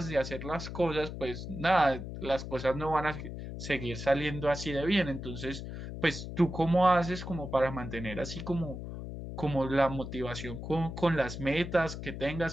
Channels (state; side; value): noise; left; hum, 8 dB below the sound